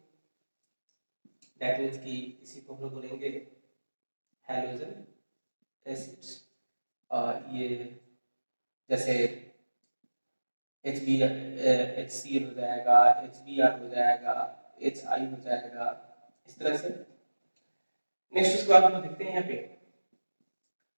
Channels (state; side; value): inverted; both; correlation -1.00